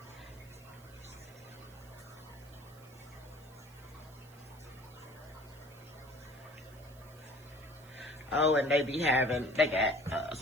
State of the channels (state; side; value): noise; right; hiss, 24 dB below the sound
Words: Oh, and they got